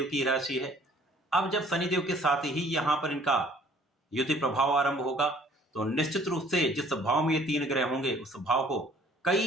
की राशि है। अब जब शनिदेव के साथ ही यहाँ पर इनका युति प्रभाव आरंभ होगा, तो निश्चित रूप से जिस भाव में ये तीन ग्रह होंगे, उस भाव को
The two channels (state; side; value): normal; both; correlation 0.56